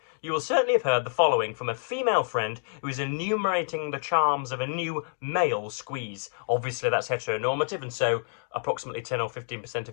you will certainly have heard the following from a female friend who is enumerating the charms of a new male squeeze. Obviously, that's heteronormative, and so approximately 10 or 15%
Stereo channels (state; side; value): silent; right; 59 dB below the other